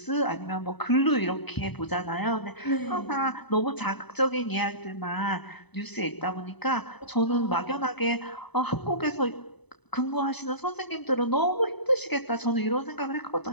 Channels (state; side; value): late; right; 0.99 ms